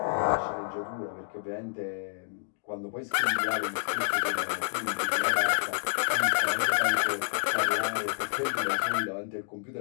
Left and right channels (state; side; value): silent; right; digital silence